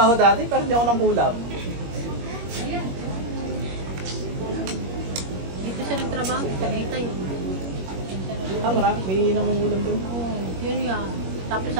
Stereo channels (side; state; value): left; late; 21 ms